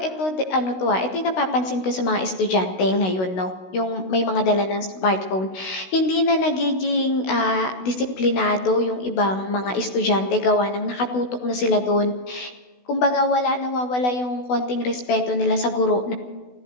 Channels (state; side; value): late; right; 16 ms